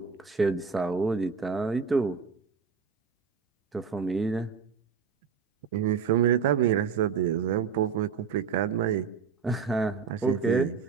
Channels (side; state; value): left; quieter; 6.1 dB